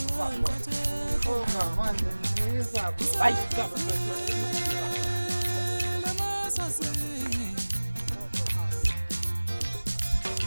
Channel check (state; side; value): inverted; both; correlation -1.00